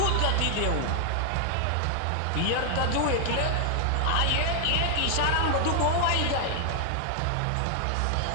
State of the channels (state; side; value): different; both; correlation 0.00